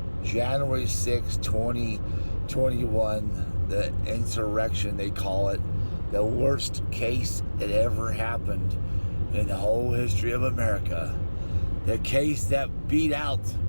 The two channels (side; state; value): both; inverted; correlation -1.00